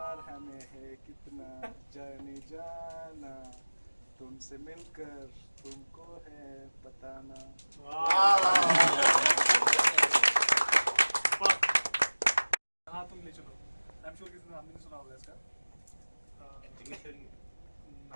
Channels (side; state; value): both; inverted; correlation -1.00